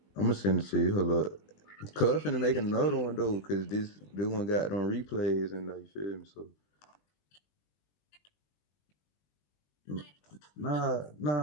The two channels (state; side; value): late; right; 20 ms